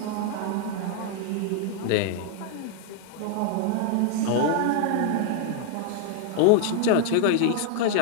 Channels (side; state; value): both; different; correlation 0.00